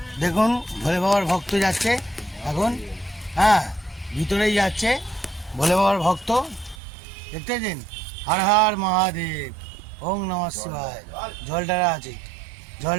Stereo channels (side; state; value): left; drops out; at 6.8 s